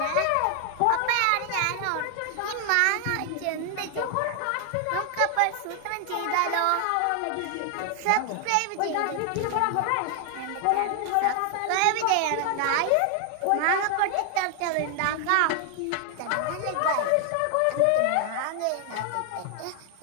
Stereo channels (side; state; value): both; different; correlation 0.00